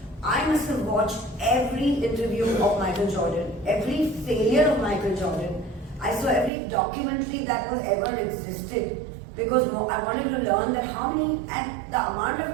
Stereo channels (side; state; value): left; drops out; at 6.5 s